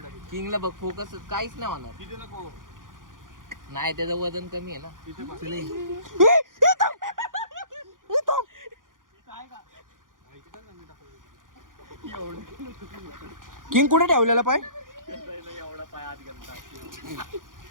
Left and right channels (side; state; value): left; late; 0.89 ms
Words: किंगला बघ फोकस काहीच नाही होणार. तिथे नको. नाही त्याचं वजन कमी आहे ना. तिथे बस. किंग कुठे ठेवलेला पाय? एवढा पाय आत घालता.